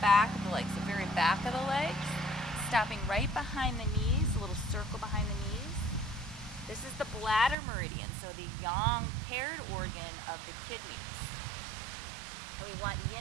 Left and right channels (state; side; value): drops out; left; at 7.6 s